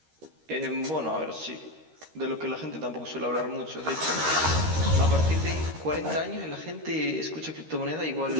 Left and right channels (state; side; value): late; left; 13 ms